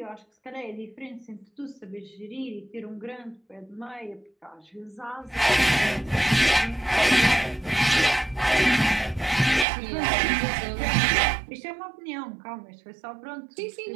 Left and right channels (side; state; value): left; drops out; at 9.7 s